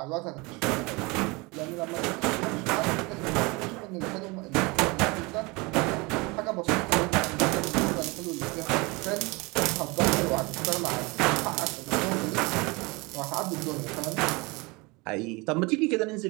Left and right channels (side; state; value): left; quieter; 26.0 dB